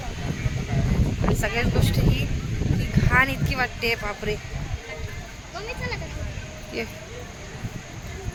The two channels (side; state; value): both; identical; correlation 1.00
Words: सगळ्याच गोष्टी ही घाण इतकी वाटते बापरे. ये